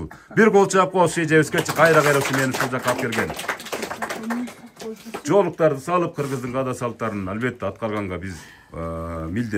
Бир кол чаап коебуз эжебизге, кайра ушу мени ушул жакка алып келген. Жоолуктарды салып, кыргыздын каада салттарын албетте аткарганга биз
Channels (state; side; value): identical; both; correlation 1.00